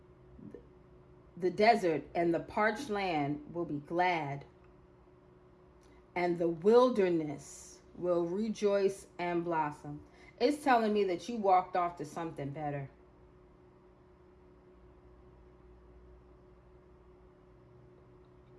The desert and the parched land will be glad, and the wilderness will rejoice and blossom. It's telling me that you walked off to something better.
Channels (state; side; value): identical; both; correlation 1.00